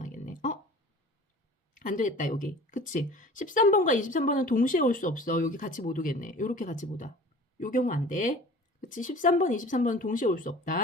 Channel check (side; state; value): both; normal; correlation 0.43